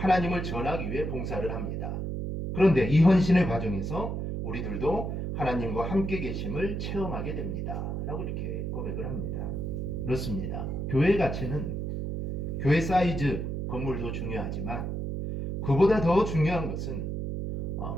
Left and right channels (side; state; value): right; noise; hum, 3 dB below the sound